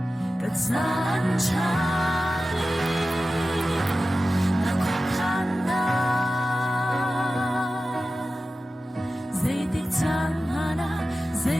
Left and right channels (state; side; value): normal; both; correlation 0.94